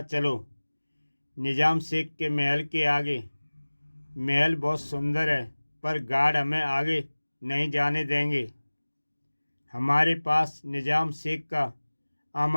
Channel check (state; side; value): inverted; both; correlation -1.00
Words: चलो। निजाम शेख के महल के आगे। महल बहुत सुंदर है, पर गार्ड हमें आगे नहीं जाने देंगे। हमारे पास निजाम शेख का